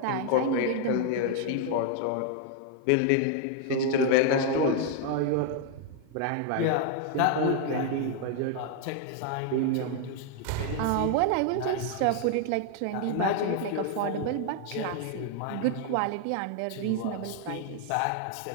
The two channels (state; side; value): different; both; correlation 0.00